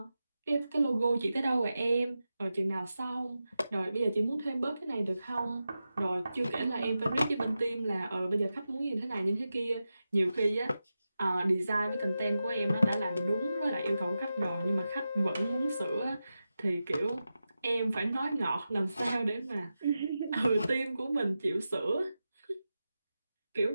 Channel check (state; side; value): inverted; both; correlation -0.92